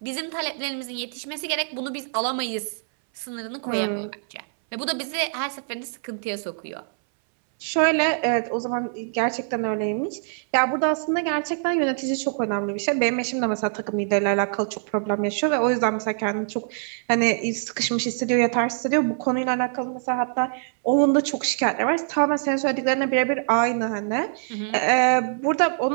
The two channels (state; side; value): silent; left; 62 dB below the other